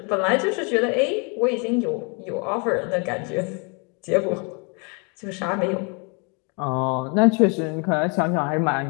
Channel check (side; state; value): right; quieter; 34.1 dB